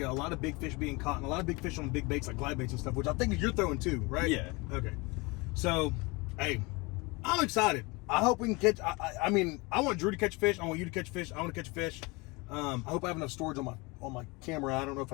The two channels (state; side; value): quieter; right; 25.8 dB